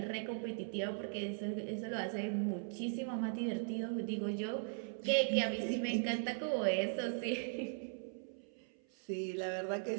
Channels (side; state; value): left; silent; 52 dB below the other